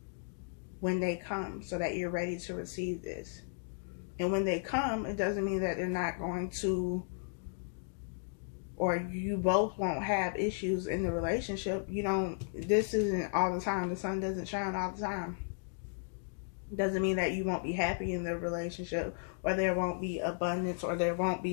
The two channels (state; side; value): silent; right; digital silence